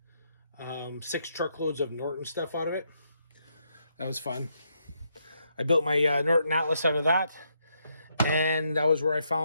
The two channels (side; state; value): both; inverted; correlation -0.77